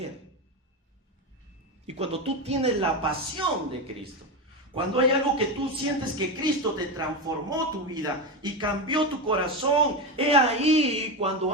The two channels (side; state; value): both; normal; correlation 0.15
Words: Y cuando tú tienes la pasión de Cristo, cuando hay algo que tú sientes que Cristo te transformó tu vida y cambió tu corazón, he ahí cuando